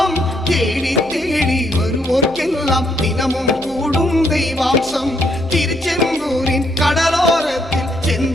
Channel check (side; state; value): right; noise; hum, 21 dB below the sound